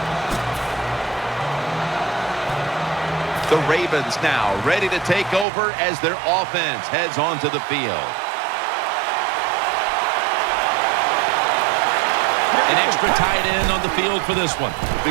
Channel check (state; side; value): drops out; left; at 5.5 s